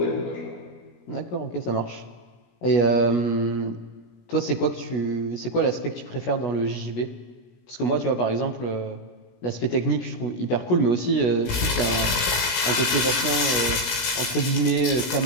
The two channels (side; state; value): right; late; 17 ms